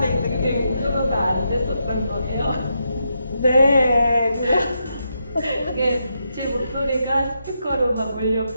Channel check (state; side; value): inverted; both; correlation -0.83